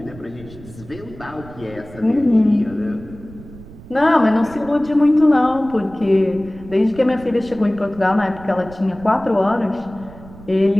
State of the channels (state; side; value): noise; right; rumble, 18 dB below the sound